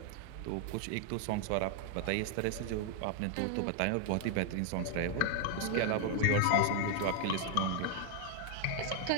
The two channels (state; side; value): different; both; correlation 0.00